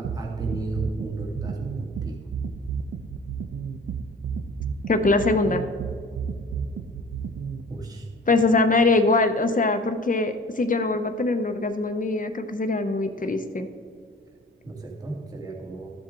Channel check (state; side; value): normal; both; correlation 0.45